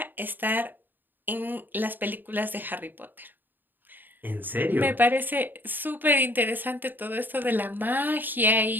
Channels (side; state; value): left; late; 0.091 ms